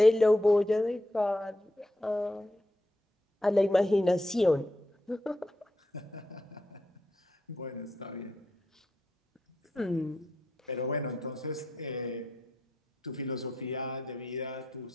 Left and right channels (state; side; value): normal; both; correlation 0.83